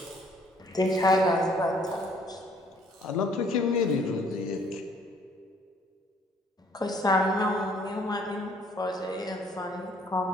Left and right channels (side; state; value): both; normal; correlation 0.61